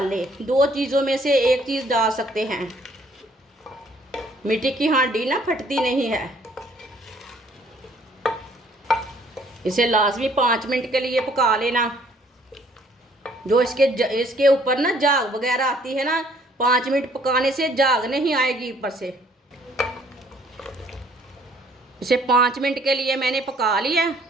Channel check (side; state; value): both; normal; correlation 0.61